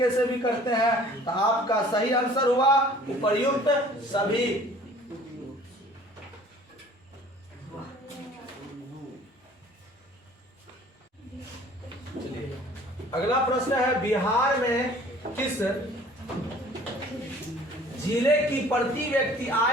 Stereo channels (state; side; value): normal; both; correlation 0.50